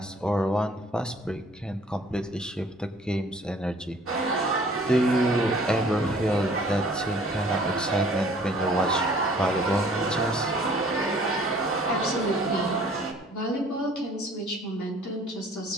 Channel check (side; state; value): both; normal; correlation 0.55